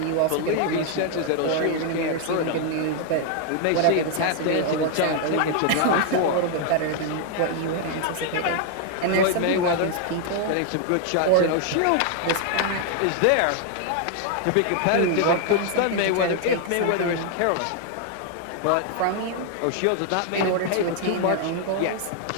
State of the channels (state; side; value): different; both; correlation 0.00